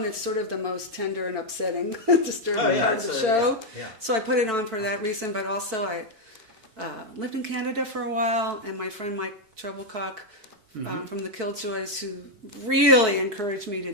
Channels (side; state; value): left; late; 4.6 ms